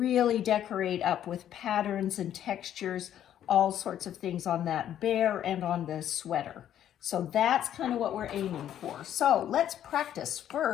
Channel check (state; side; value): quieter; right; 10.8 dB